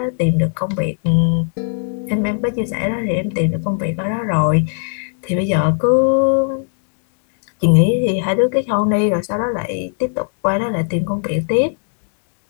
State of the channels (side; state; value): right; silent; 67 dB below the other